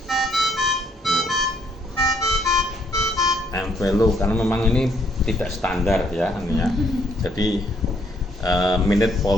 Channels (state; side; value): normal; both; correlation 0.69